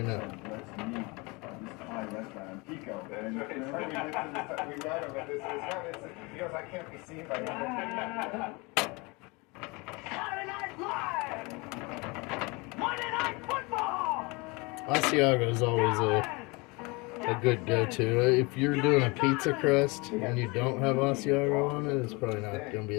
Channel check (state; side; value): quieter; right; 26.8 dB